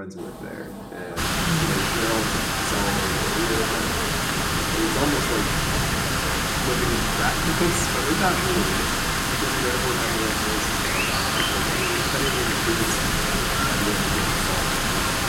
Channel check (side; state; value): both; identical; correlation 1.00